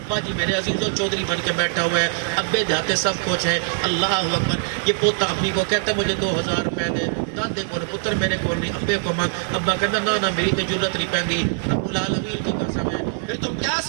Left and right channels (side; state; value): left; silent; 64 dB below the other